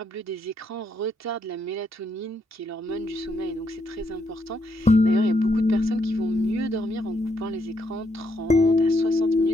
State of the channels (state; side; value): normal; both; correlation 0.76